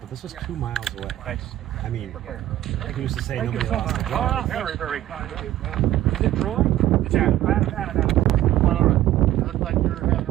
this was 2 miles away. Thanks. I mean, like we used to say, nobody lost the job. Very, very kind of you. Is it Troy? It's Adam. Well, all right. It looks like you're having a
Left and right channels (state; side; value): quieter; left; 13.7 dB